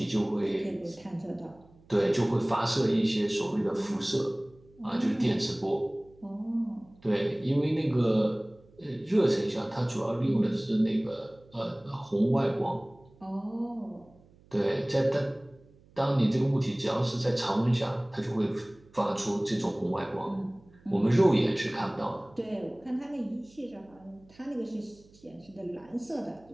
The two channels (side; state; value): right; noise; hum, 27 dB below the sound